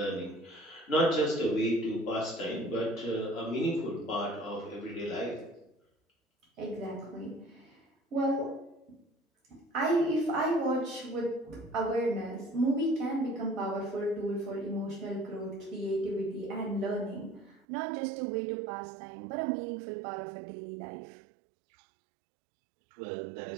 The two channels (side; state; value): left; drops out; at 17.6 s